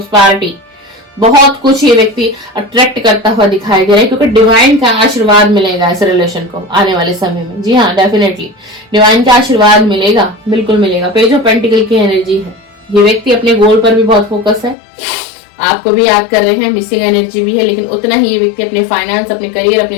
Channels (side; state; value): right; drops out; at 14.8 s